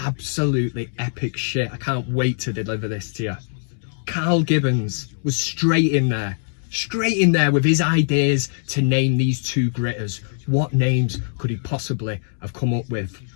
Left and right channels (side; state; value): right; silent; 64 dB below the other